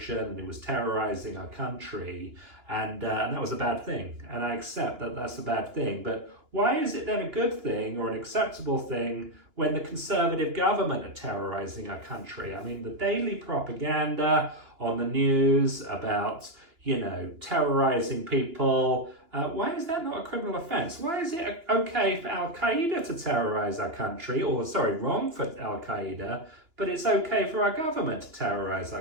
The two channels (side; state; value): left; late; 2.9 ms